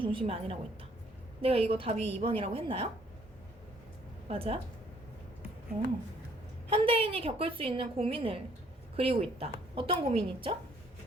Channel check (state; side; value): normal; both; correlation 0.63